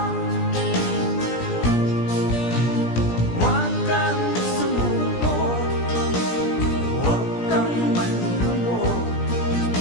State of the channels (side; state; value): right; late; 17 ms